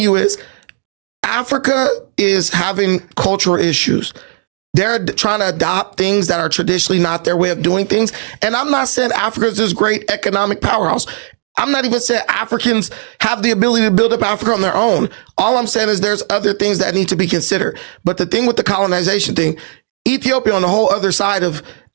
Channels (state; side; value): silent; left; digital silence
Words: you is Africa is having cultural issues. They're trying to adopt things that are traditionally not their way of doing things. And I'm not saying Africa is this great economic powerhouse. I'm not even saying Africans have the ability to build up Africa on their own. Yeah, all I'm saying is there's other things that need to be considered. But the thing with the colonization thing, Ethiopia on the whole other side of